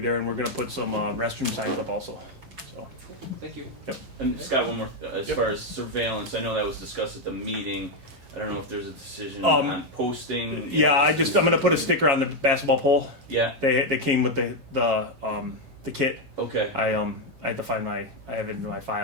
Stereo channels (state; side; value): late; left; 11 ms